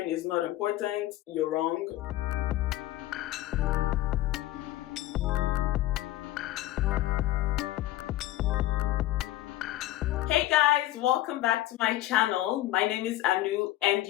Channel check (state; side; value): quieter; right; 15.1 dB